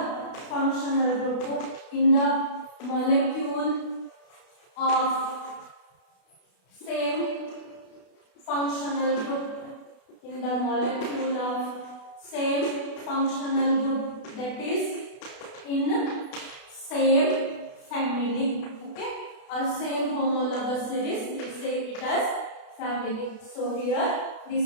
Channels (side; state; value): right; late; 32 ms